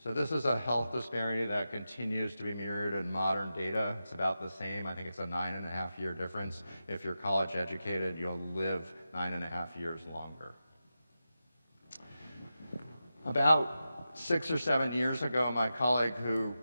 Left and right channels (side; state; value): both; inverted; correlation -0.91